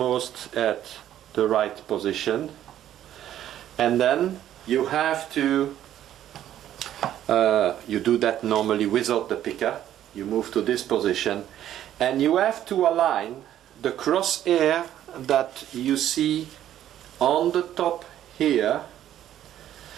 at the right position, and then you have to you do that normally without the picker. You move to this position and you have to align the crosshair that you see on the top here,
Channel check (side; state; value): left; quieter; 11.6 dB